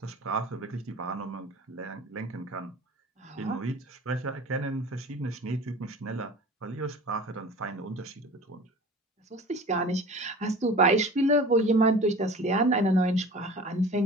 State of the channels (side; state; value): both; normal; correlation 0.40